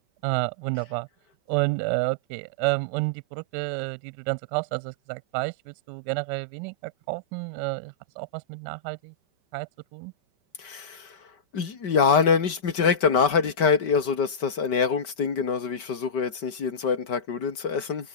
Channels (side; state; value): right; late; 5.2 ms